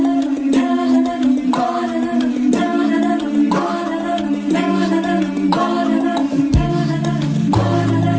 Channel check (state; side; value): identical; both; correlation 1.00